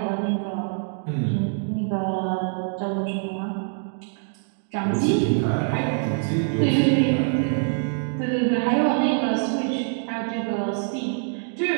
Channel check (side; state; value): left; silent; 62 dB below the other